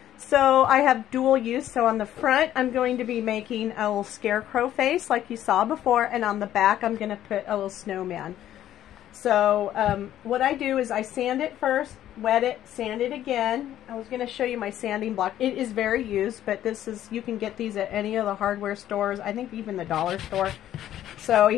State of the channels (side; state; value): right; quieter; 12.1 dB